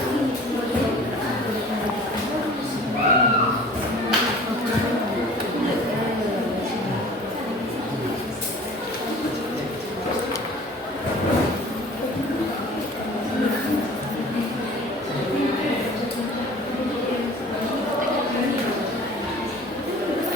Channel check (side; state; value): both; normal; correlation 0.46